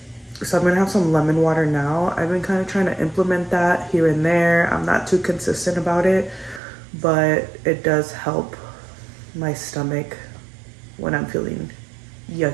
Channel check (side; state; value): left; drops out; at 6.6 s